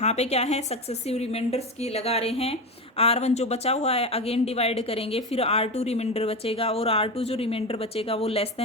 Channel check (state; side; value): normal; both; correlation 0.20